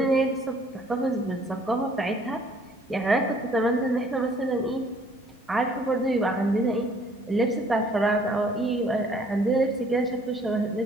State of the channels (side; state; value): both; normal; correlation 0.59